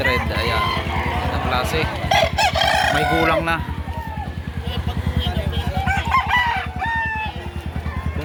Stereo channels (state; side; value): identical; both; correlation 1.00